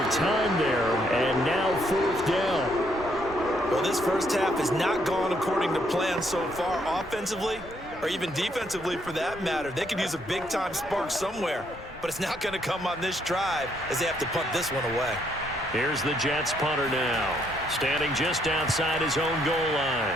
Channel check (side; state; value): both; normal; correlation 0.72